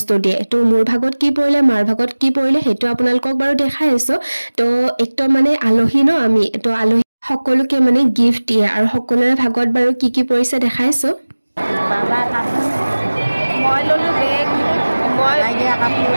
দিয়ে তো মোৰ ভাগত কি পৰিলে মাৰ ভাগত কি পৰিলে হেতু আপোনালোকক বাৰু দেখাই আছো তো একদম মানে আলহী ন আমি তো আলহী সকলোকে মানে গিফট দিয়ে আৰু সকলোৰে ভাগত বাৰু কি পৰিছে দেখাইছো Baba kamu. মই ললো বেগ মই Lagi kamu.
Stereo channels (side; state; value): both; inverted; correlation -1.00